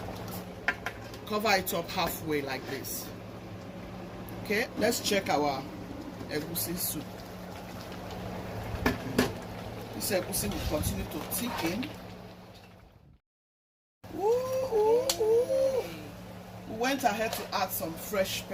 Cover it up halfway like this. Okay, let's check our egusi soup. This egusi will continue to thicken. Ooh, ooh, ooh. We went ahead to add some fresh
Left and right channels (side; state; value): both; identical; correlation 1.00